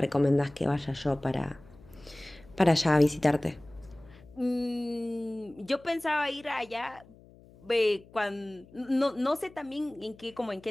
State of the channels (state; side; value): noise; left; hum, 24 dB below the sound